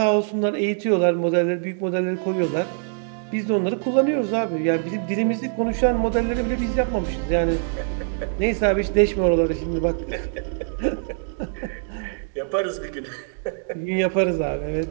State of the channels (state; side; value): silent; left; 63 dB below the other